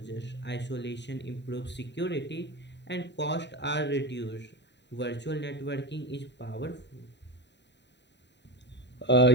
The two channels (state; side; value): late; right; 0.51 ms